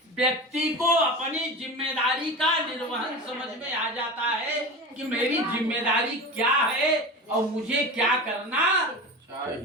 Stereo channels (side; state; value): both; normal; correlation 0.29